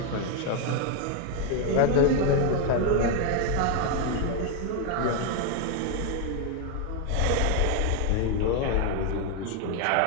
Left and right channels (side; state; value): both; different; correlation 0.01